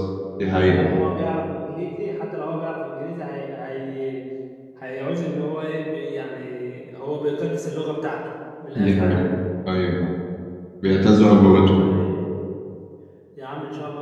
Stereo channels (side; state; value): both; identical; correlation 1.00